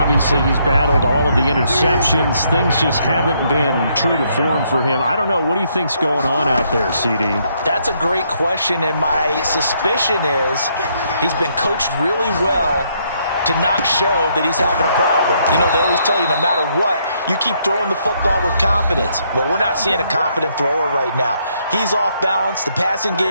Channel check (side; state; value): both; inverted; correlation -0.72